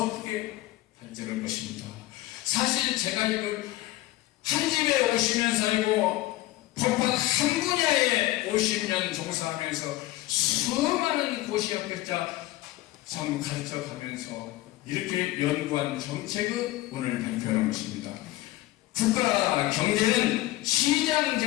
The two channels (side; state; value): right; quieter; 17.0 dB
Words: 크게 발전할 것입니다. 사실 제가 이걸 한 집에 50년 살고 법학 한 분야에 50년 종사하면서 수많은 고시학교자 참 가르쳐가면서 이렇게 연구한 정책을 오늘 발표하는 것입니다. 국가 경제는 시장